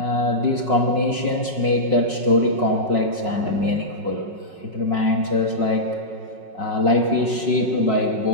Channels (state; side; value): late; left; 5.4 ms